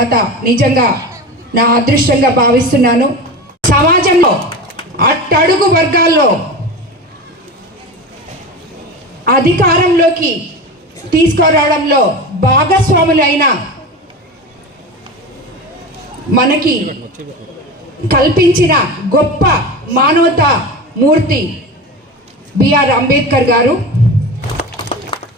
నిజంగా నా అదృష్టంగా భావిస్తున్నాను. సమాజంలో అట్టడుగు వర్గాల్లో అధికారంలోకి తీసుకురావడంలో భాగస్వాములైన మనకి కల్పించిన గొప్ప మానవతా మూర్తి బిఆర్ అంబేద్కర్ గారు.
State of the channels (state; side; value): normal; both; correlation 0.28